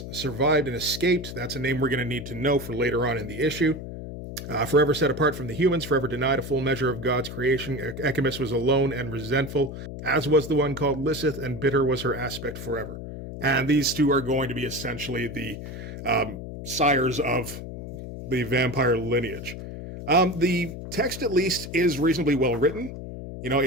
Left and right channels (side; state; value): left; noise; hum, 9 dB below the sound